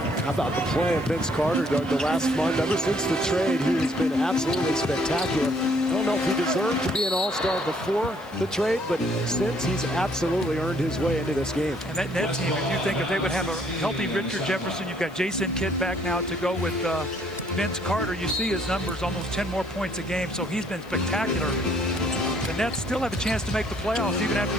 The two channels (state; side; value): noise; left; hiss, 27 dB below the sound